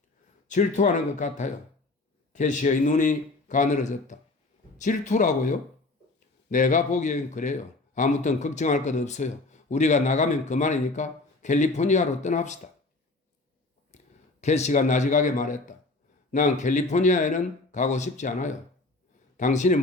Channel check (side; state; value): right; quieter; 3.2 dB